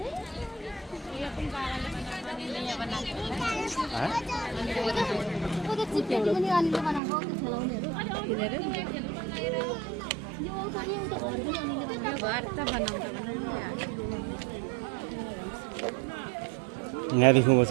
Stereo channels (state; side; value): drops out; left; at 7.0 s